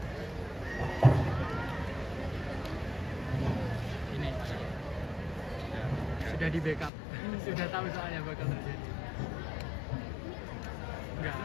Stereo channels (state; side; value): drops out; right; at 6.9 s